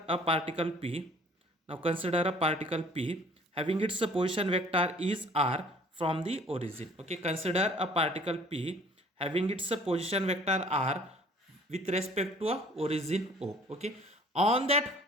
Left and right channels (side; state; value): both; normal; correlation 0.53